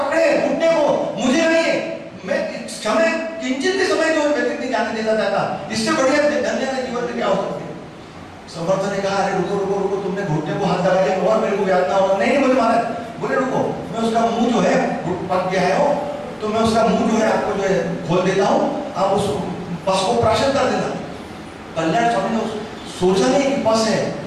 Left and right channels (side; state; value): both; identical; correlation 1.00